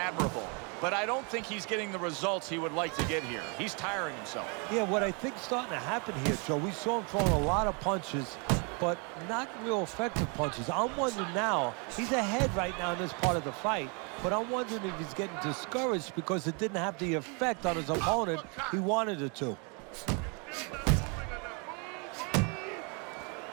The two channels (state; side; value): quieter; left; 34.4 dB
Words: but I don't think he's getting the results he would like to get here. He's tiring himself. Yeah, what I think's starting to happen here, Joe, we saw him throwing a lot of punches, but not real effective punches. I'm wondering now, he's ahead right now in this part of the fight, but I'm wondering if he's getting discouraged because it didn't have the effect on his opponent he wanted it to.